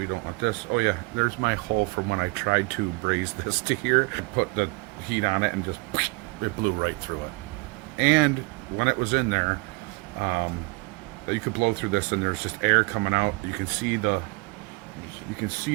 don't want this. Oh yeah, there's my hole from when I tried to braze this to here. I put the heat on it and just it blew right through it. And when it was in there, you could blow through this and there's just air coming out. You can see the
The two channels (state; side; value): quieter; left; 27.2 dB